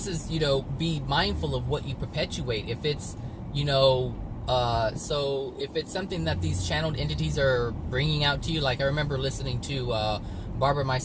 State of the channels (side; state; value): both; identical; correlation 1.00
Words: is, you know, be mindful of what you perpetuate. If it's, you know, so if it's something that these channeled entities are bringing out to you, like I remember listening to Barbara